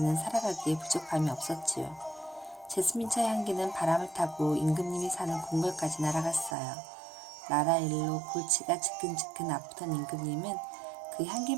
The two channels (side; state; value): left; drops out; at 6.6 s